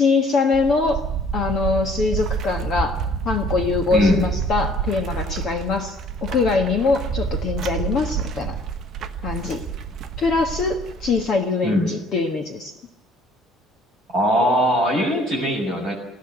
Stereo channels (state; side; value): normal; both; correlation 0.56